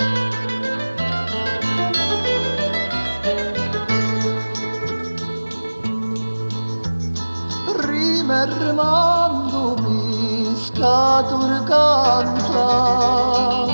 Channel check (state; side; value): inverted; both; correlation -1.00